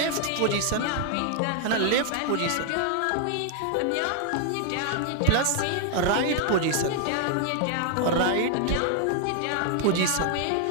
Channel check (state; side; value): different; both; correlation 0.00